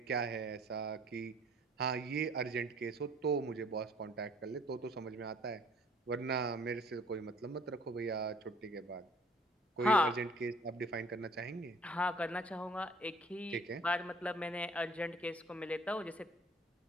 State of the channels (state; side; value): normal; both; correlation 0.54